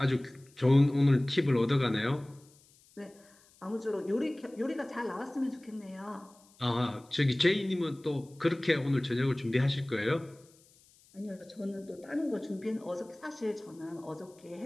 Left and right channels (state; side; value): noise; left; hiss, 29 dB below the sound